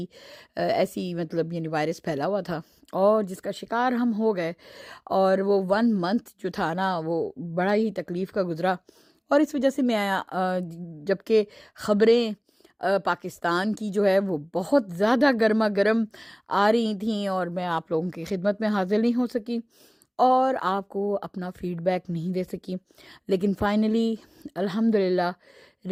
ایسی مطلب یعنی وائرس پھیلا ہوا تھا اور جس کا شکار ہم ہو گئے، اور وہ 1 month جو تھا نا وہ بڑا ہی تکلیف کا گزرا۔ اور اس وجہ سے میں جبکہ خبریں پاکستان کی جو ہے وہ بہت زیادہ گرما گرم آ رہی تھیں اور میں آپ لوگوں کی خدمت میں حاضر نہیں ہو سکی اور آپ کو اپنا فیڈ بیک نہیں دے سکی، لیکن فائنلی الحمدللہ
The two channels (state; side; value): identical; both; correlation 1.00